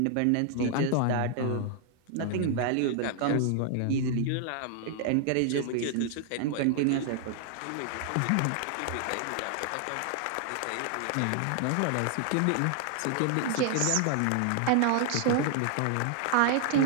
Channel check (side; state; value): both; different; correlation 0.00